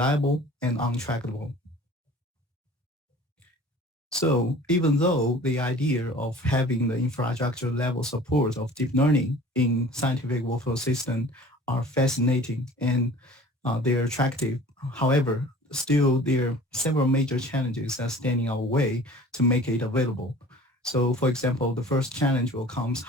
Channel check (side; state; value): both; normal; correlation 0.45